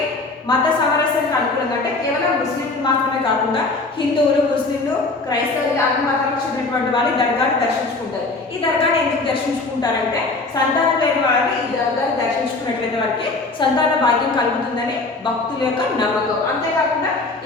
మత సామరస్యానికి అనుకూలంగా, అంటే కేవలం ముస్లింలు మాత్రమే కాకుండా హిందువులు, ముస్లింలు, క్రైస్తవులు అన్ని మతాలకు చెందినటువంటి వాళ్ళు ఈ దర్గాని దర్శించుకుంటారు. ఈ దర్గాని ఎందుకు దర్శించుకుంటారంటే సంతానం లేని వారిని ఈ దర్గాని దర్శించుకున్నట్లయితే వారికి సంతాన భాగ్యం కలుగుతుందని భక్తుల యొక్క నమ్మకం. అంతేకాకుండా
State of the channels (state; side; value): quieter; right; 3.4 dB